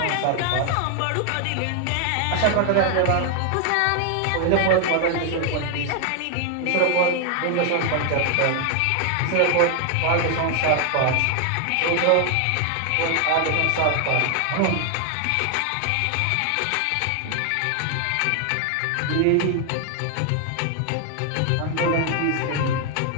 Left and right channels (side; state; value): both; different; correlation 0.00